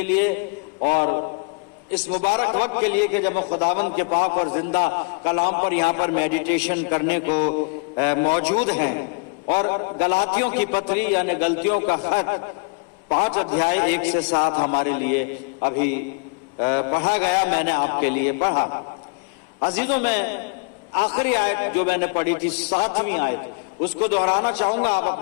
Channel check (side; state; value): right; quieter; 32.3 dB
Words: लिए और इस मुबारक वक्त के लिए कि जब हम खुदावंद के पाक और जिंदा कलाम पर यहाँ पर मेडिटेशन करने को मौजूद हैं। और गलातियों की पत्री यानी गलतियों का खत 5 अध्याय 1 से 7 हमारे लिए अभी पढ़ा गया, मैंने आपके लिए पढ़ा। अजीजों, मैं आखिरी आयत जो मैंने पढ़ी थी 7वीं आयत, उसको दोहराना चाहूंगा। आप